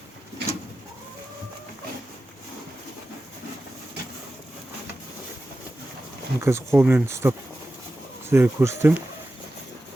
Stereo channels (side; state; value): both; normal; correlation 0.93